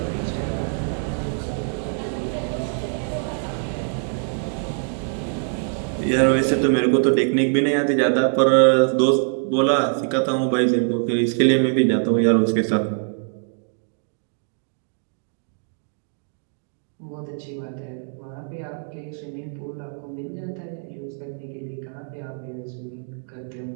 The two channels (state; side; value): silent; left; 63 dB below the other